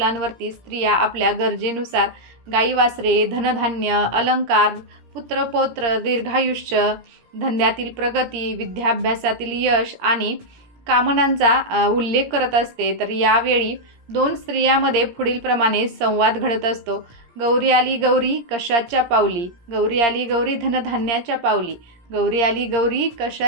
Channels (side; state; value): left; late; 17 ms